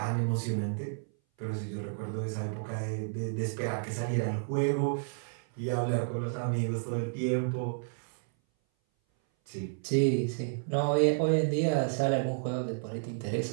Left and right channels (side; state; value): left; silent; 57 dB below the other